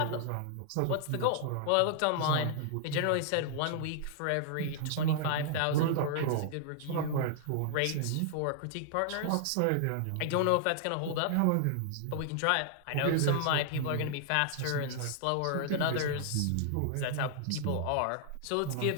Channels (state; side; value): different; both; correlation -0.01